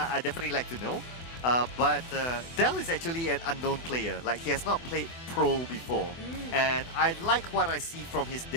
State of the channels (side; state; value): right; late; 24 ms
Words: definitely like to know. But Del is actually an unknown player. Like, he has not played pro before. And I like what I see from his